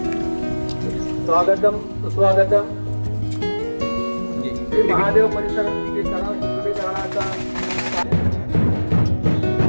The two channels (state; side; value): inverted; both; correlation -1.00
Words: स्वागतम सुस्वागतम. श्री महादेव परिसरातील तलाव शुद्धीकरणाचा